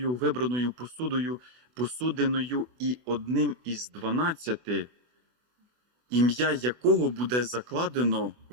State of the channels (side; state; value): left; late; 24 ms